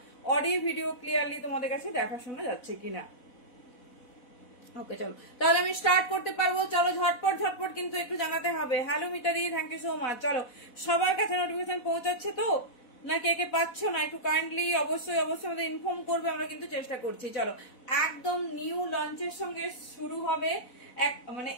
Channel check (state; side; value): late; right; 4.1 ms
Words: অডিও ভিডিও ক্লিয়ারলি তোমাদের কাছে দেখা শোনা যাচ্ছে কিনা। ওকে চলো তাহলে আমি স্টার্ট করতে পারবো। চলো ঝটপট ঝটপট কিন্তু একটু জানাতে হবে। হ্যালো মিতাদি, থ্যাংক ইউ সো মাচ। চলো সবার কাছে নোটিফিকেশন পৌঁছাচ্ছে তো, না কে কে পাচ্ছ না একটু কাইন্ডলি অবশ্যই অবশ্যই আমাদের ইনফর্ম করবে। আমরা কিন্তু চেষ্টা করছি। চলো একদম নিউ লঞ্চের সঙ্গে শুরু হবে। মানে